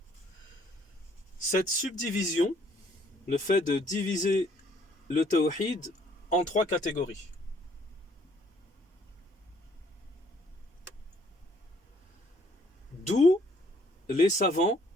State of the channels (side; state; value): both; normal; correlation 0.63